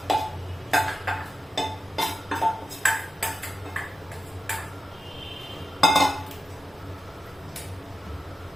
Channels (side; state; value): both; normal; correlation 0.91